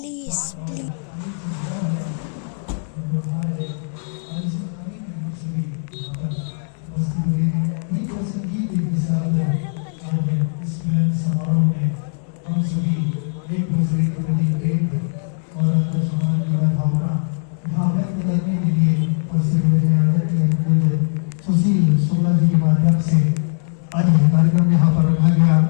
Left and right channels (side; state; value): right; silent; digital silence